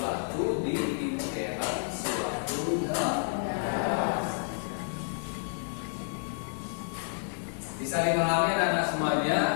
di dalam suatu negara. Bisa dipahami anak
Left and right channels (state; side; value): silent; right; digital silence